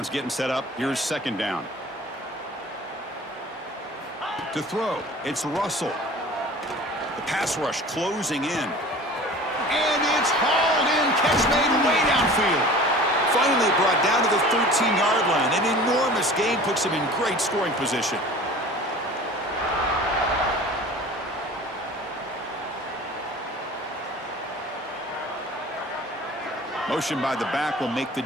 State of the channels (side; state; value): both; normal; correlation 0.42